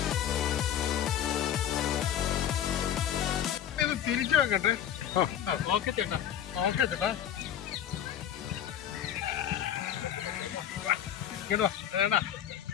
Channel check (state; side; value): quieter; right; 10.1 dB